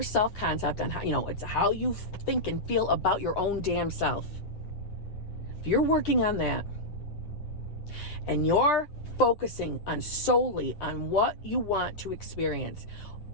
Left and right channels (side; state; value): right; late; 9.9 ms